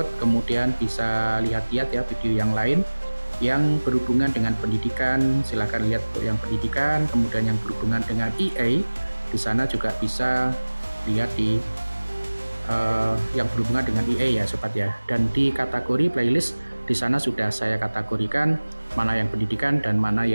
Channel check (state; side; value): inverted; both; correlation -1.00